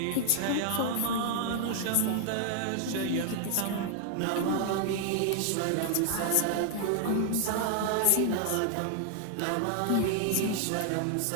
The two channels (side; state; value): both; different; correlation 0.00